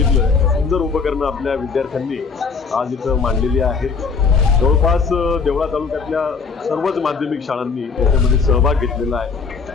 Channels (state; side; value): quieter; right; 5.1 dB